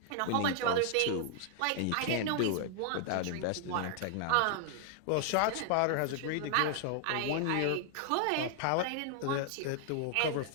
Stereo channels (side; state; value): both; different; correlation 0.00